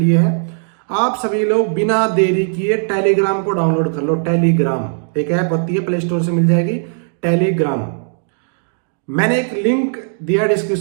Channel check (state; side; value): silent; left; digital silence